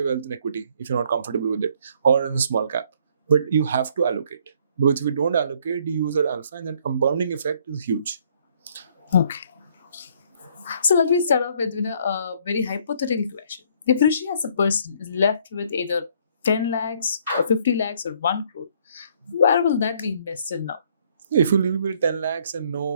wealth in equity if you're not comfortable with it, or in a small cap. But you have to allocate. Because if you don't allocate, you use that alpha, and that compounding effect is huge. Okay. So let me start off with a very hypothetical question. If Rishi as a person is left with either 10 lakhs or 50 lakhs or 1 crore, where will that be invested now? If you leave with 10 lakhs and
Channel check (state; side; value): inverted; both; correlation -0.64